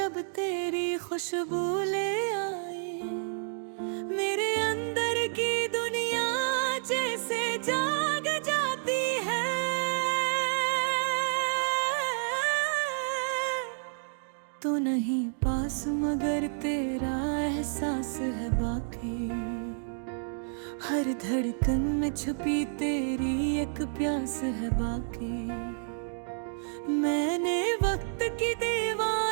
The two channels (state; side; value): silent; left; digital silence